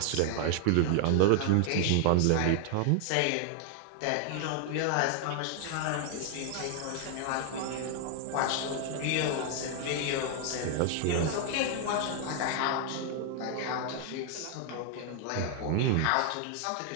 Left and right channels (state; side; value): different; both; correlation 0.00